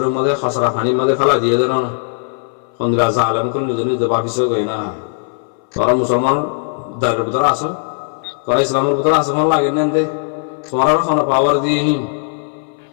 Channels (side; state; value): right; silent; 60 dB below the other